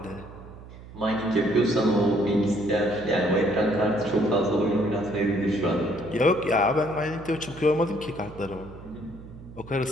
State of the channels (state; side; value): noise; right; hum, 17 dB below the sound